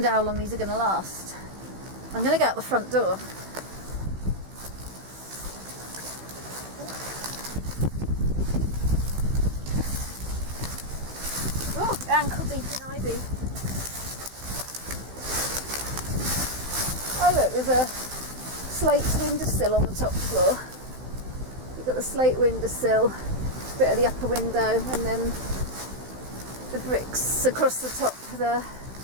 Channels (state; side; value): late; left; 16 ms